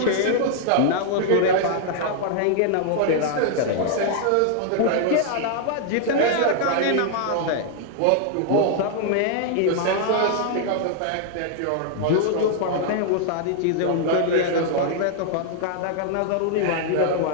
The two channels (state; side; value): different; both; correlation -0.01